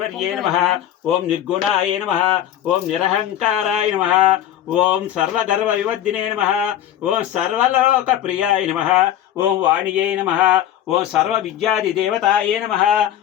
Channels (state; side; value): quieter; right; 11.5 dB